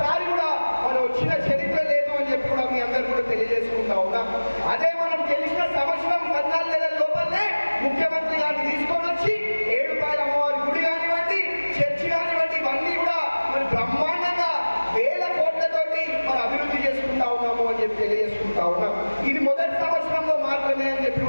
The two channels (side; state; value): both; inverted; correlation -1.00